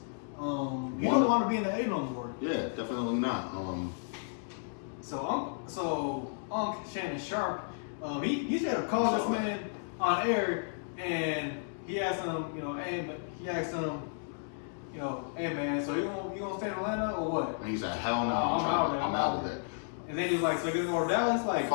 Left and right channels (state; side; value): silent; right; digital silence